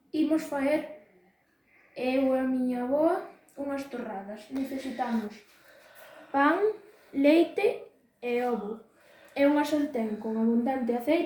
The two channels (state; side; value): identical; both; correlation 1.00